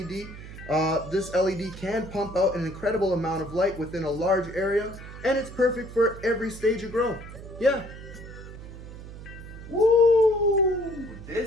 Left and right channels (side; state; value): right; noise; hum, 13 dB below the sound